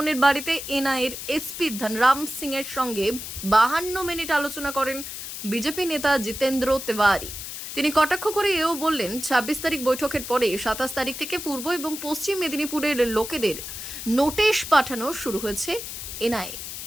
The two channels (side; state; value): left; noise; hiss, 8 dB below the sound